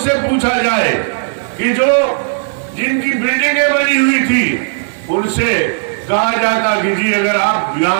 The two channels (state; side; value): silent; left; digital silence